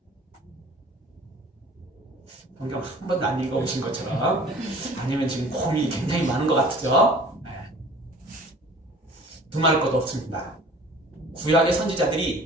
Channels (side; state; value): both; normal; correlation 0.47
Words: 성경 한 번도 안 읽어보신 것처럼, 아니면 지금 고민이 굉장히 많은 것 같죠? 두말할 것도 없습니다. 구약의 선지자들이